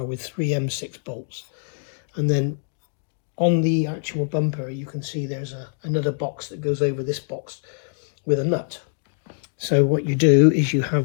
with 3 M6 bolts. And then on the actual bumper, you can see there's another box that goes over this box with a nut. So what you do is you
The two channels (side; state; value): right; silent; digital silence